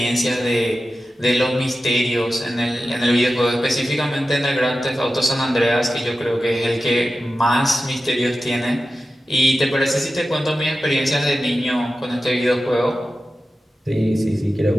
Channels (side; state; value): both; normal; correlation 0.93